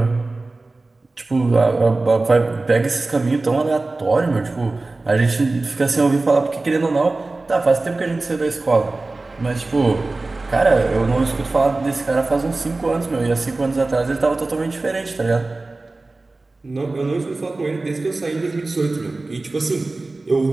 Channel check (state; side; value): quieter; left; 3.3 dB